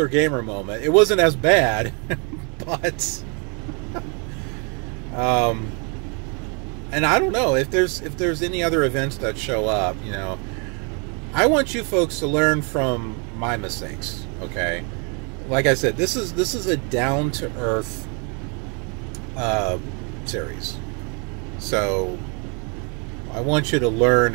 gamer moment. It wasn't as bad, but and I don't know if there's any other events that show up. You know, I want you folks to learn from my mistakes. Okay, like I said, this is a down to earth series, so I want you to learn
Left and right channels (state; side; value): quieter; left; 35.4 dB